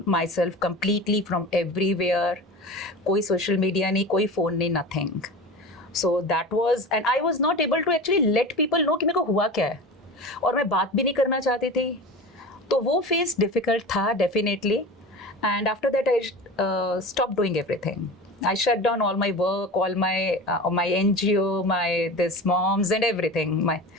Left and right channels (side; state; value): both; normal; correlation 0.32